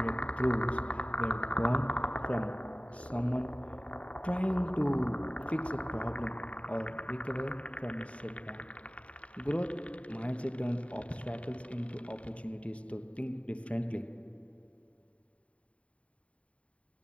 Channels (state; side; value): late; right; 0.064 ms